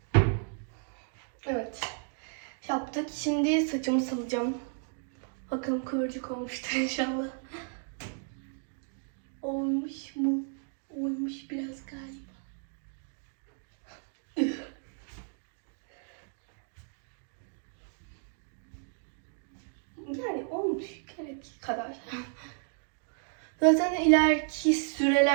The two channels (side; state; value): left; silent; 56 dB below the other